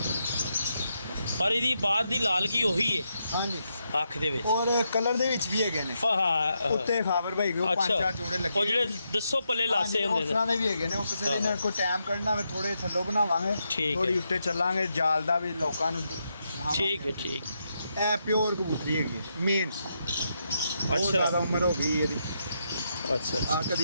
ਪਰ ਇਹਦੀ ਬਾਤ ਦੀ ਲਾਲਗੀ ਉਹੀ ਹੈ ਹਾਂਜੀ ਅੱਖ ਦੇ ਵਿੱਚ। ਔਰ ਕਲਰ ਦੇ ਵਿੱਚ ਵੀ ਹੈਗੇ ਨੇ ਉੱਤੇ ਖਾਬਰ ਭਾਈ ਉਹ 5-4 ਜੋੜੇ ਲੱਗੇ ਉਹ ਜਿਹੜੇ ਦੱਸੋ ਪੱਲੇ ਲਾਸੇ ਹੁੰਦੇ ਉਸ ਤਰ੍ਹਾਂ ਦੇ ਵੀ ਹੈਗੇ ਨੇ। ਉਹ ਕਿਸੇ ਦੇ ਨਾਲ ਕੋਈ ਟਾਈਮ ਕੱਢਣਾ ਹੋਵੇ ਥੋੜੇ ਥੱਲੋਂ ਬਣਾਵਾਂਗੇ ਠੀਕ ਥੋੜੀ ਹੈ। ਉੱਤੇ ਚੱਲਾਂਗੇ ਜਾਲ ਦਾ ਵੀ ਲੋਕਾਂ ਨੂੰ ਦਿਖਾਵਾਂਗੇ। ਠੀਕ ਹੈ ਠੀਕ। ਇਹ ਪਿਓਰ ਕਬੂਤਰੀ ਹੈਗੀ ਮੇਨ। ਅੱਛਾ। ਜ਼ਿਆਦਾ ਉਮਰ ਹੋ ਗਈ ਇਹਦੀ। ਅੱਛਾ ਆ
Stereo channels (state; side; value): inverted; both; correlation -0.82